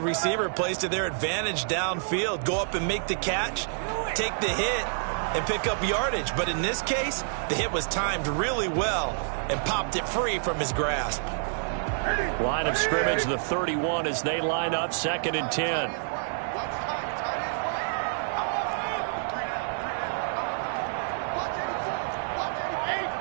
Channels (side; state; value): left; silent; 59 dB below the other